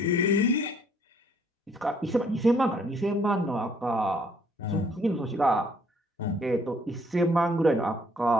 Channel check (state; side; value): normal; both; correlation 0.63